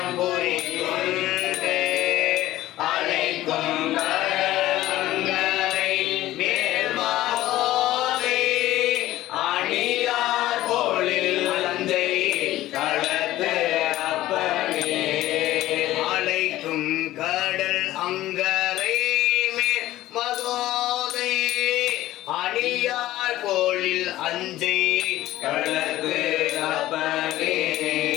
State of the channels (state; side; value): quieter; right; 15.3 dB